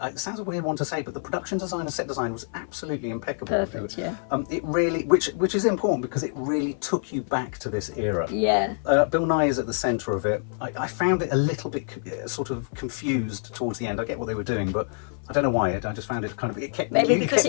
It sounds a weird one to say, but the production design and set design was absolutely impeccable. Perfect, yeah. It really, which is important because it really took you back to this era. Yeah. Bill Nighy is at the centre of it. I found it a little bit sort of confused towards the end. I get what they were doing, but I don't know why. I just found it kind of, it kept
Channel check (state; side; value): silent; right; 56 dB below the other